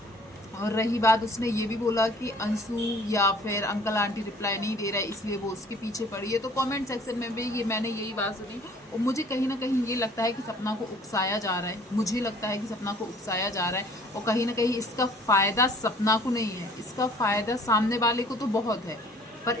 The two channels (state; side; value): normal; both; correlation 0.53